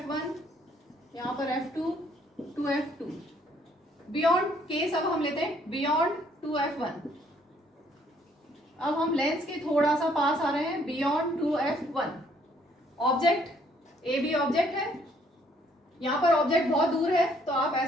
यहाँ पर F2 to F2, beyond case अब हम लेते हैं बियॉन्ड टू F1। अब हम लेंस के थोड़ा सा पास आ रहे हैं, beyond to F1। Object A B object है, यहाँ पर ऑब्जेक्ट बहुत दूर है तो आप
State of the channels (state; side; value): normal; both; correlation 0.65